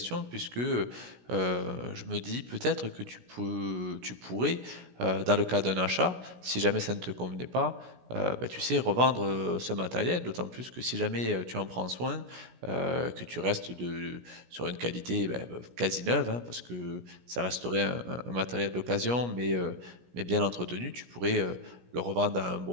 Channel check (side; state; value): left; late; 17 ms